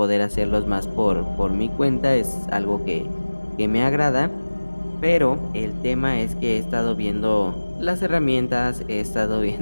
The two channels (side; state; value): both; inverted; correlation -1.00